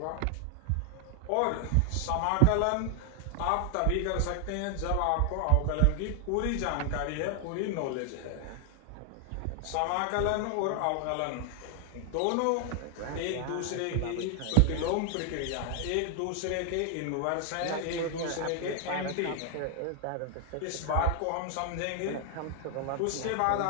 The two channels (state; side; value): different; both; correlation 0.00